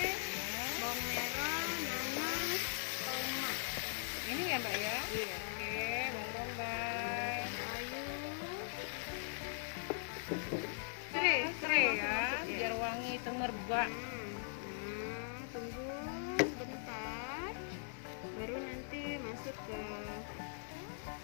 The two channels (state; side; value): silent; right; digital silence